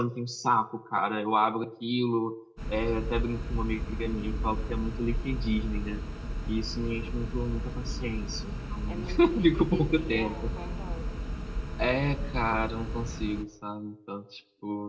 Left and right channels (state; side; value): identical; both; correlation 1.00